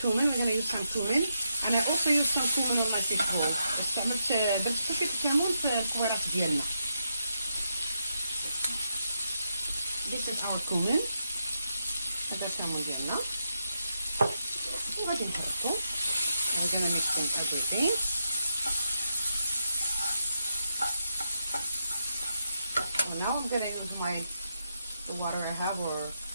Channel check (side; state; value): both; inverted; correlation -0.83